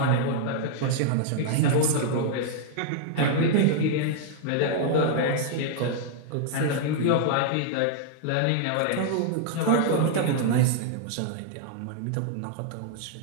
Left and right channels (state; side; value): different; both; correlation 0.00